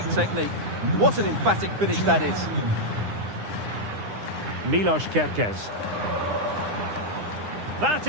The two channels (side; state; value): left; late; 9.8 ms